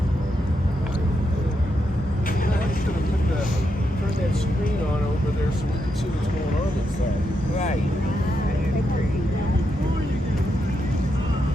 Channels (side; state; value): both; normal; correlation 0.83